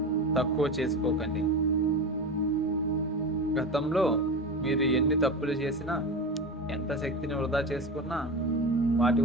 తక్కువ చేసుకోకండి. గతంలో మీరు ఎన్ని తప్పులు చేసినా, ఎంత శక్తిని వృధా చేసుకున్నా వాటి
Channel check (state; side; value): normal; both; correlation 0.25